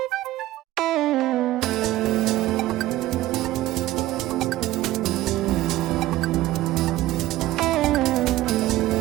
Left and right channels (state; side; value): quieter; left; 15.9 dB